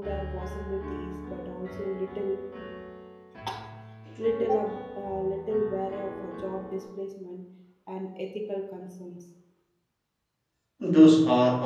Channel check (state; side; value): identical; both; correlation 1.00